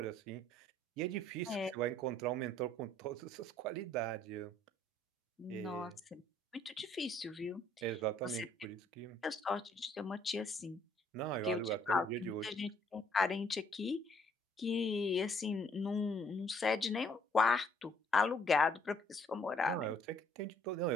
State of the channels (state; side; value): normal; both; correlation 0.63